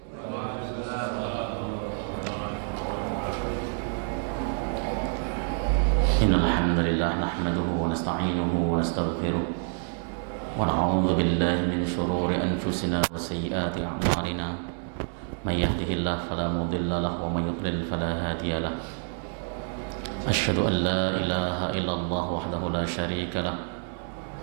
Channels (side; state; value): left; silent; 60 dB below the other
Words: Innal hamdalillah nahmaduhu wa nasta'inuhu wa nastaghfiruh wa na'udzu billahi min shururi anfusina wa sayyiati a'malina. May yahdihillahu fala mudilla lahu wa may yudlil fala hadiya lahu. Asyhadu an la ilaha illallah wahdahu la syarika lahu